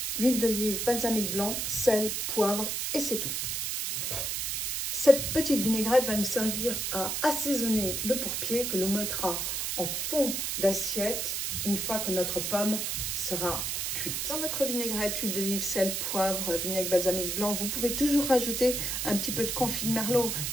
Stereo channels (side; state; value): right; noise; hiss, 1 dB below the sound